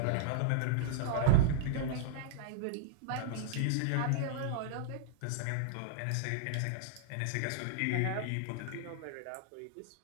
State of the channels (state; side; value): different; both; correlation -0.01